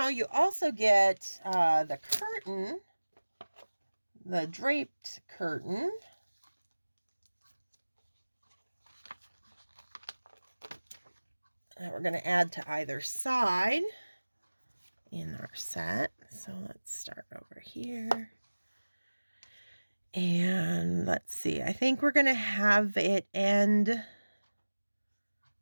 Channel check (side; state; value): both; inverted; correlation -1.00